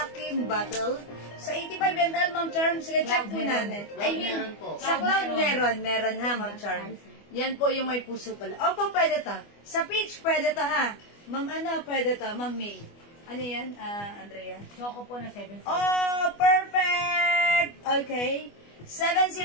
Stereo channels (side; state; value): right; late; 25 ms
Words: bottle. Sa 85 ml, Ma'am Charm, sige, check po natin. I mean, sa Cloud meron ha, Ma'am Charm. Yan po yung may puso pala. Opo, pwede to. Sa Peach, pwede to ha. Ma'am, ano, pwede to. Ma'am May. Ano yan, Andrea? Choco po na 70. Oh, perfect! Okay.